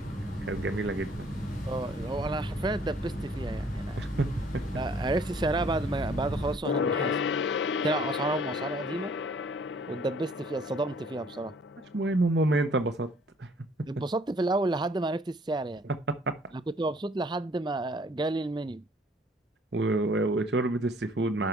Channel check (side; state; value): both; normal; correlation 0.59